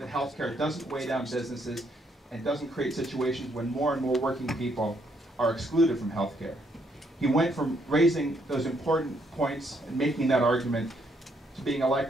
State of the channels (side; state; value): both; normal; correlation 0.72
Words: healthcare doesn't weigh down businesses and doesn't create situations when more and more working people are excluded from healthcare. He went from raising those important points and making that argument to being